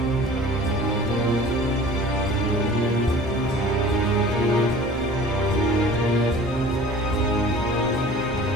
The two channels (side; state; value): both; normal; correlation 0.45